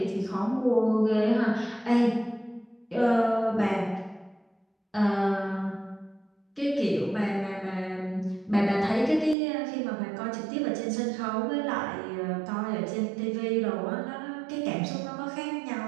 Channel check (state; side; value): drops out; left; at 9.3 s